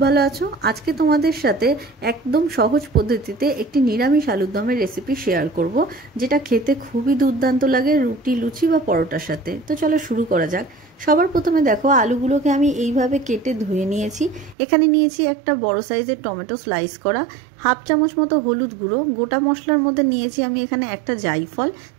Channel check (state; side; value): drops out; left; at 14.6 s